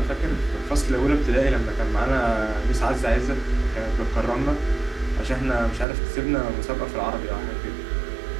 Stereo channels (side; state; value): left; drops out; at 5.9 s